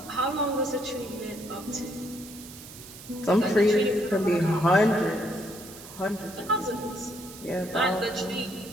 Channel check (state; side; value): noise; right; hiss, 16 dB below the sound